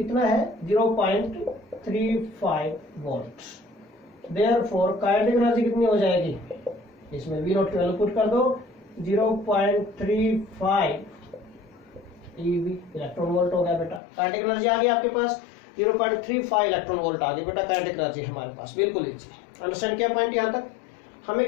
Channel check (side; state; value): right; drops out; at 14.0 s